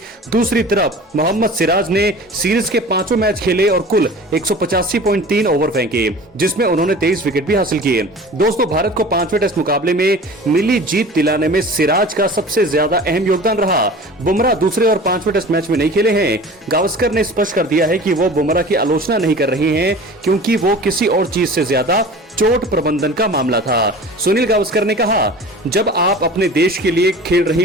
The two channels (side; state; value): both; normal; correlation 0.40